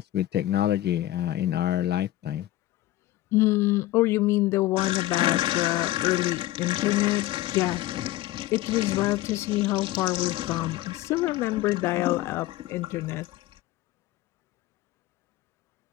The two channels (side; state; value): right; quieter; 15.7 dB